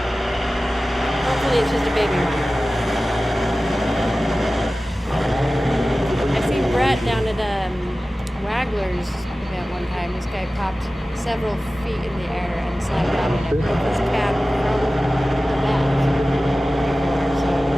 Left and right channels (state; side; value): normal; both; correlation 0.96